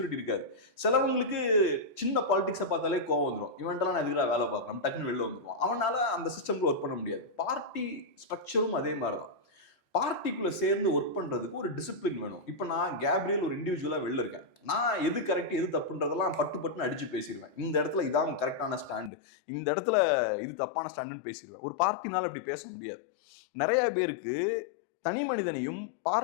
இருக்காது. சிலவங்களுக்கு சின்ன பாலிடிக்ஸை பார்த்தாலே கோவம் வந்துடும். இவன்ட்டெல்லாம் நான் எதுக்குடா வேலை பார்க்கணும், டக்குன்னு வெளில வந்துடுவான். அவனால அந்த சிஸ்டம்ல ஒர்க் பண்ண முடியாது. பார்ட்டி ஸ்ட்ரக்சரும் அதே மாதிரிதான். பார்ட்டிக்குள்ள சேர்ந்து ஒர்க் பண்றதுக்கு ஒரு டிசிப்ளின் வேணும். இப்ப நான் கேப்ரியல் ஒரு இண்டிவிஜுவலா வெளில இருக்கேன். நான் எது கரெக்ட் எது தப்புன்றதெல்லாம் பட்டுன்னு அடிச்சு பேசிடுவேன். இந்த இடத்துல இதான் கரெக்டான ஸ்டாண்டு, இந்த இடத்துல இது தப்பான ஸ்டாண்டுன்னு பேசிடுவேன். ஒரு பார்ட்டினால அப்படி பேச முடியாது. நிறைய பேருக்கு தனி மனிதனையும்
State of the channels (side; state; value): right; drops out; at 19.1 s